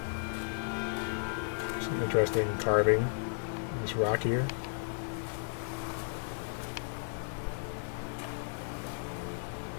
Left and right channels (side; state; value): right; silent; 55 dB below the other